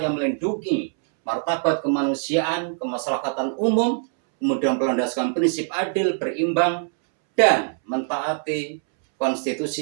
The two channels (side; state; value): left; silent; 63 dB below the other